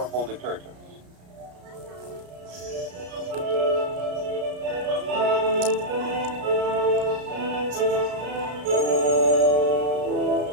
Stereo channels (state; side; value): late; left; 33 ms